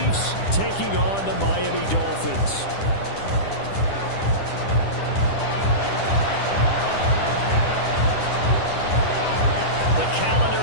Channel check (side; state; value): right; late; 10 ms